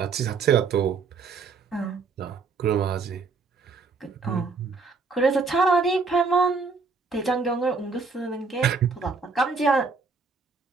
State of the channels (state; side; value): quieter; left; 4.6 dB